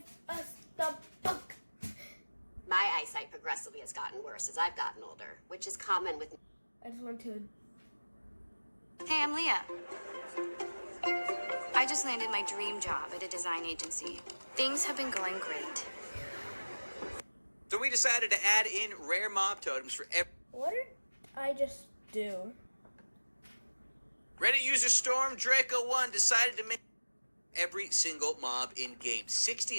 us the book. My eyesight progressively has gotten worse as I've gotten older, which is common with... I just want to... Hey, I'm Leah. I just landed my dream job at a design agency. Things have been going great. So we decided to add in rare mob totems for every... What did I just do? Reddit user Storm Draco1 decided to make every single mob in game,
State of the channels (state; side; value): inverted; both; correlation -1.00